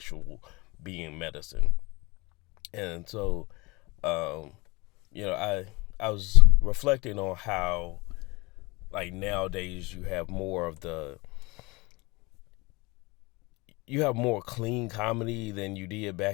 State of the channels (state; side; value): quieter; right; 24.5 dB